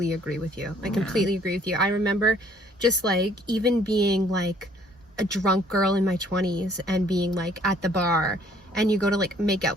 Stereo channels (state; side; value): normal; both; correlation 0.60